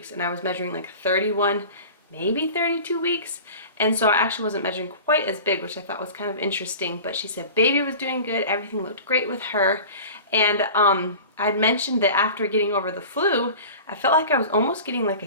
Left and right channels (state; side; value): inverted; both; correlation -0.37